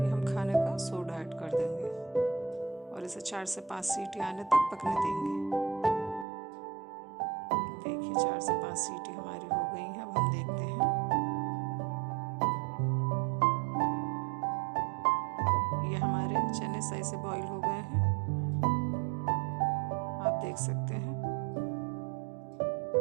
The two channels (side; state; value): left; drops out; at 6.2 s